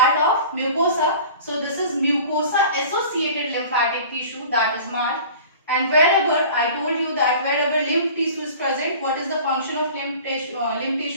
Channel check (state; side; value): inverted; both; correlation -0.42